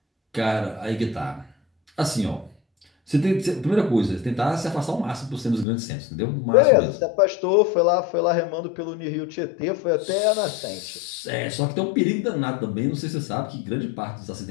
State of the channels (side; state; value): right; drops out; at 5.7 s